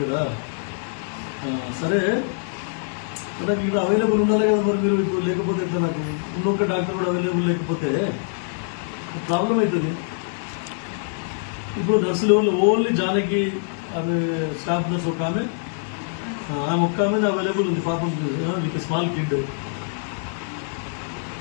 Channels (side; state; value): right; silent; 60 dB below the other